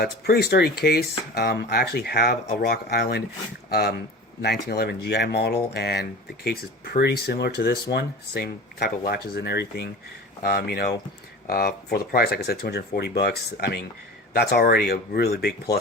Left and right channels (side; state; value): both; normal; correlation 0.36